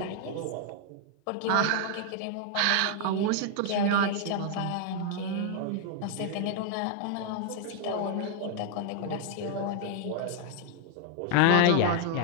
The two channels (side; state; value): both; different; correlation 0.00